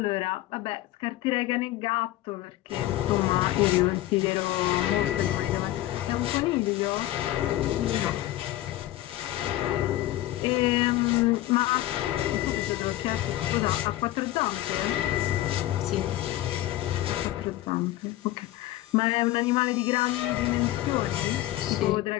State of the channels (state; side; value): quieter; right; 15.3 dB